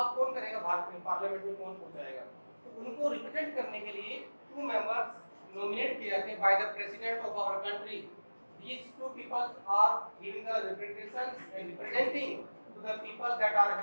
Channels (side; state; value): both; inverted; correlation -1.00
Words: कौन करेगा भारत में, पार्लियामेंट में कौन पहुंचाएगा? तो उनको रिप्रेजेंट करने के लिए 2 मेंबर्स नॉमिनेट किए जाते हैं by the president of our country. These 2 people are giving the representations and representing to the people that are